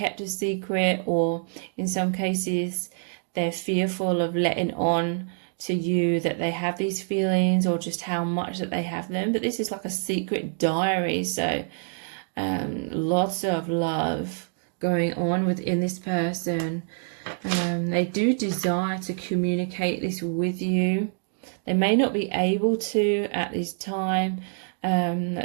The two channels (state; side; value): silent; left; 60 dB below the other